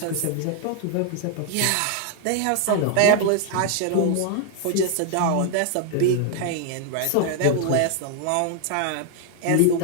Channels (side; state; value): both; different; correlation 0.00